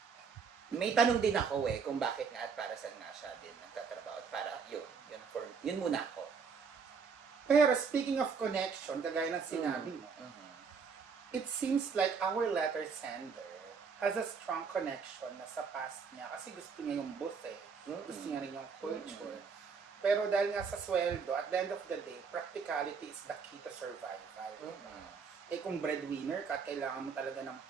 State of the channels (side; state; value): left; quieter; 5.7 dB